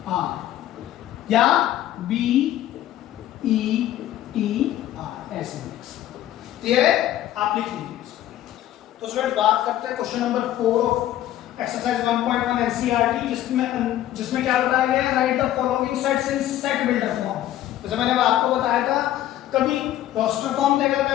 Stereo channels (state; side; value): quieter; right; 12.9 dB